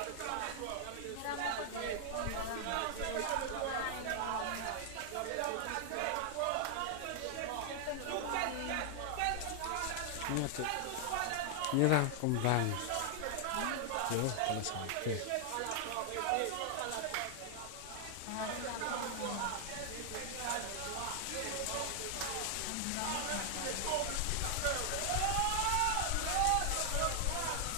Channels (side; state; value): both; different; correlation 0.00